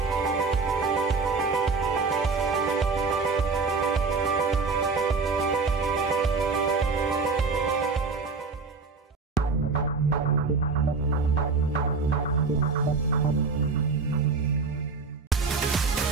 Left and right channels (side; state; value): left; quieter; 4.5 dB